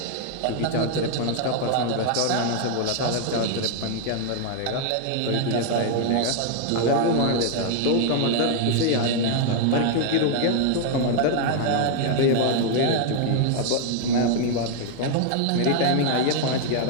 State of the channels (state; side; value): different; both; correlation 0.00